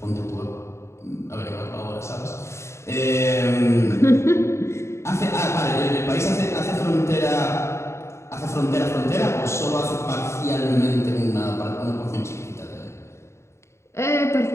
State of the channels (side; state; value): right; late; 0.13 ms